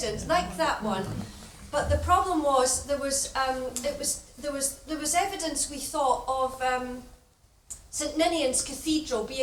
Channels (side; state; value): both; identical; correlation 1.00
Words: like that one, But the problem was there was evidence, we thought, of St Ninian's Cathedral